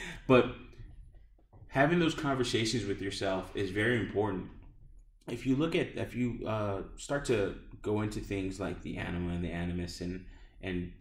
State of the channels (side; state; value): both; identical; correlation 1.00